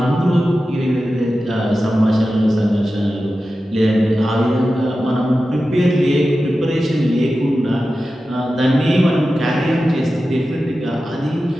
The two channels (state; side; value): normal; both; correlation 0.93